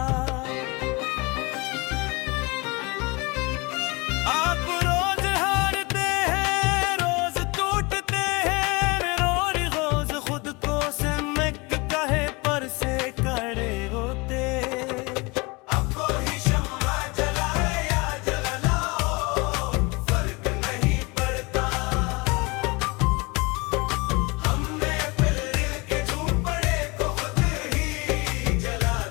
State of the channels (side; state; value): right; quieter; 26.6 dB